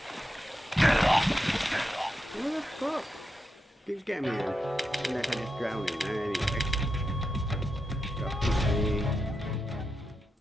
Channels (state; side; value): normal; both; correlation 0.87